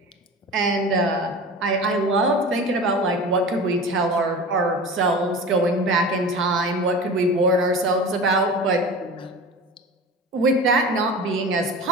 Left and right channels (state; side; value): normal; both; correlation 0.34